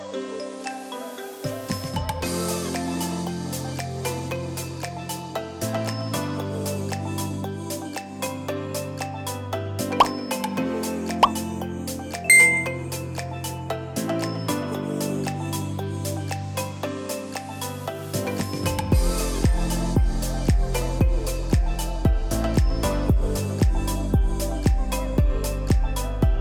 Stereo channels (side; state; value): both; identical; correlation 1.00